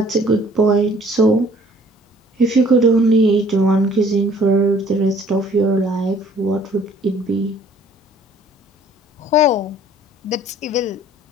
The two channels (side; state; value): both; normal; correlation 0.56